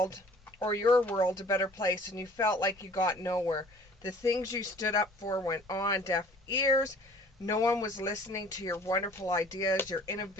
or your world a better place, and you felt like you got nowhere. The things you stood up for went on deaf ears. No one was listening to your wonderful ideas, your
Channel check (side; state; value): both; normal; correlation 0.51